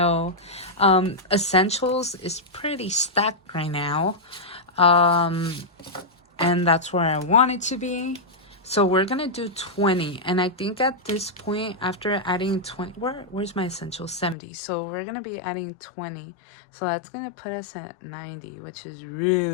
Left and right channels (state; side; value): drops out; right; at 14.4 s